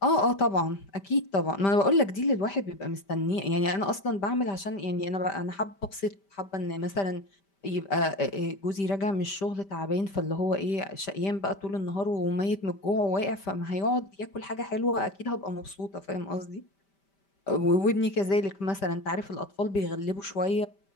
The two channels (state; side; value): late; right; 5.1 ms